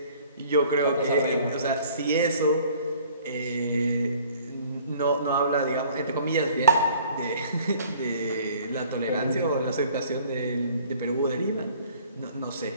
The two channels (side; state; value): both; inverted; correlation -0.53